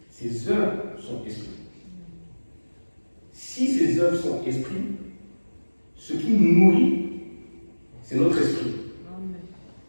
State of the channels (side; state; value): both; inverted; correlation -1.00